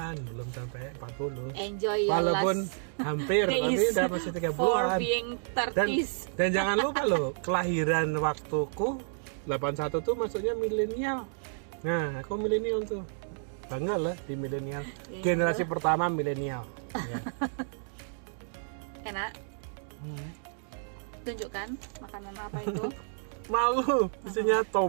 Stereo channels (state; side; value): silent; left; digital silence